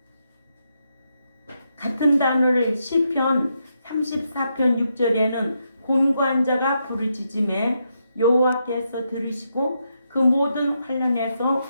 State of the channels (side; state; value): both; inverted; correlation -0.81